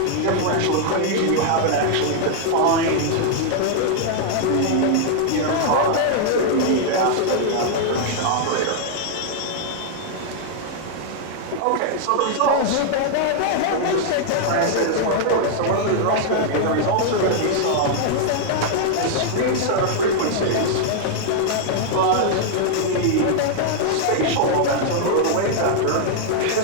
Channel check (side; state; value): both; different; correlation -0.01